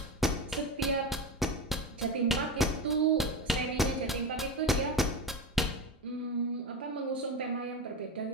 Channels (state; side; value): normal; both; correlation 0.21